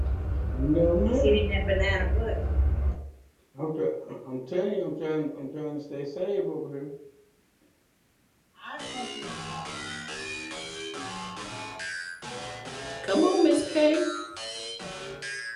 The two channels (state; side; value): identical; both; correlation 1.00